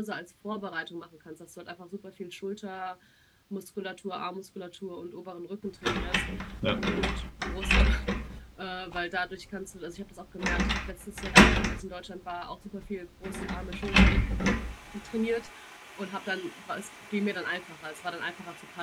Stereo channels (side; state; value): both; identical; correlation 1.00